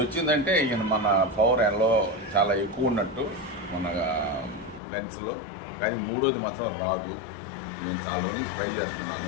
వచ్చిందంటే ఈయన మన పవర్ ఎల్లో చాలా ఎక్కువ ఉన్నట్టు మన లెన్స్లో. కానీ మూడోది మాత్రం రాదు. నేను చాలా రోజులు ట్రై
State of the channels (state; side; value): drops out; right; at 4.8 s